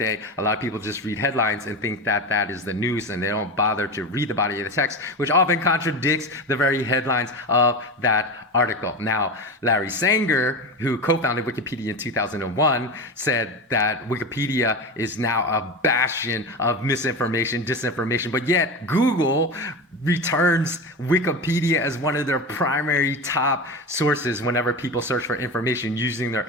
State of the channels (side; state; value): both; normal; correlation 0.23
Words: a lot of people just read headlines and think that that is the news, and they don't bother to read the body of the text, which often contradicts the very headlines of that article. Now, Larry Sanger, who co-founded Wikipedia in 2001, said that Wikipedia is now a bastion of misinformation, disinformation, but yet Google returns Wikipedia as one of their primary top sources whenever people search for information using their